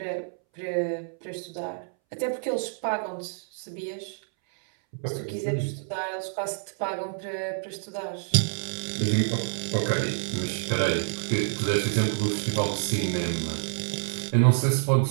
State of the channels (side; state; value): left; silent; 60 dB below the other